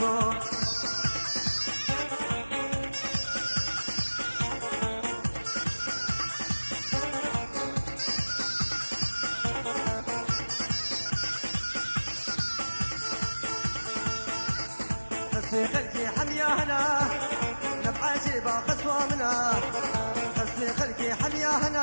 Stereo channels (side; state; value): both; inverted; correlation -1.00